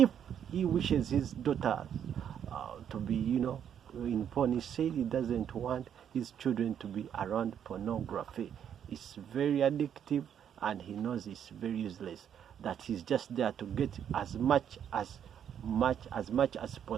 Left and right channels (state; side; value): quieter; left; 8.9 dB